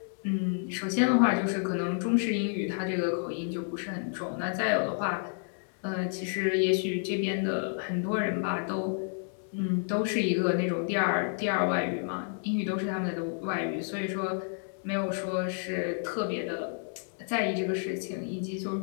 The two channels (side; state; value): right; silent; 57 dB below the other